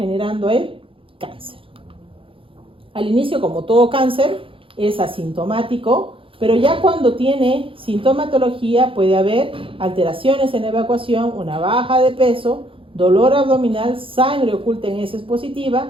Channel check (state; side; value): late; left; 0.26 ms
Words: el cáncer. Al inicio, como todo cáncer, es asintomático, pero ya cuando tiene sintomatología puede haber alteraciones en la evacuación, una baja de peso, dolor abdominal, sangre oculta en heces